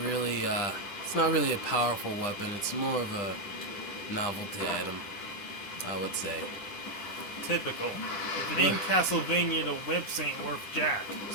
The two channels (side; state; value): right; late; 9.8 ms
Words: really a powerful weapon. It's more of a novelty item, I would say. Typical. If it ain't Castlevania, the whips ain't worth jack.